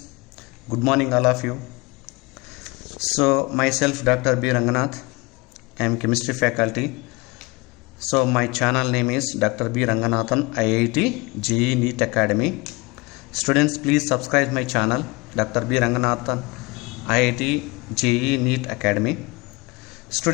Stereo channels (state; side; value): quieter; right; 24.8 dB